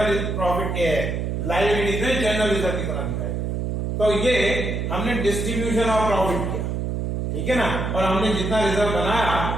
प्रॉफिट के लायबिलिटी में जनरल रिजर्व की तरह दिखाई देगा। तो ये हमने डिस्ट्रीब्यूशन ऑफ प्रॉफिट किया, ठीक है ना? और हमने जितना रिजर्व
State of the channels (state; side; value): noise; right; hum, 2 dB below the sound